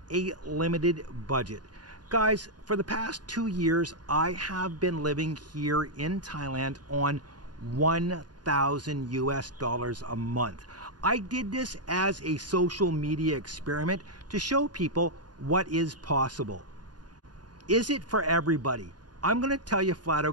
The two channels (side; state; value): left; late; 0.70 ms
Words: a limited budget. Guys, for the past 2 years I have been living here in Thailand on 1,000 US dollars a month. I did this as a social media experiment to show people what is possible. Is it for everybody? I'm going to tell you flat